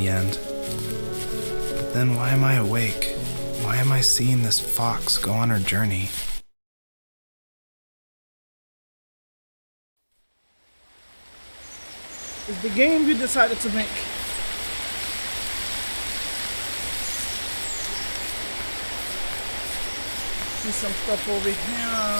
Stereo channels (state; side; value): inverted; both; correlation -1.00